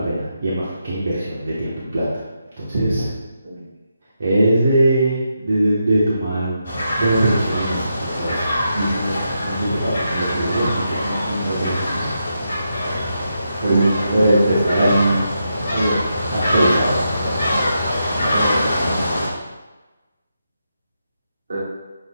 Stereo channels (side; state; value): both; inverted; correlation -0.84